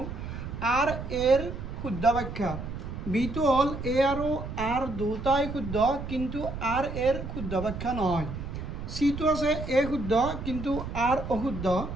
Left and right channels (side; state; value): right; noise; rumble, 7 dB below the sound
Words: আৰ এৰ শুদ্ধ ব্যাখ্যা বি টু হল এ আৰু আৰ দুটাই শুদ্ধ কিন্তু আৰ এৰ শুদ্ধ ব্যাখ্যা নহয় সি টু আছে এ শুদ্ধ কিন্তু আৰ অশুদ্ধ